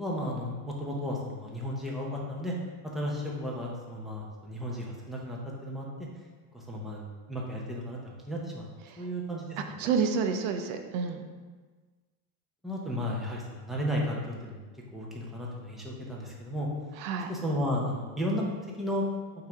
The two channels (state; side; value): normal; both; correlation 0.25